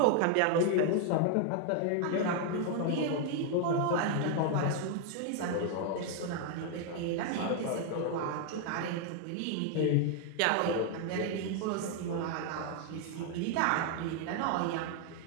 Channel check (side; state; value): both; different; correlation 0.00